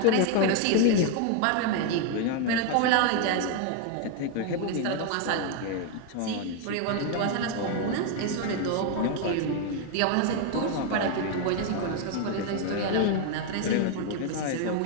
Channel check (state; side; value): different; both; correlation 0.01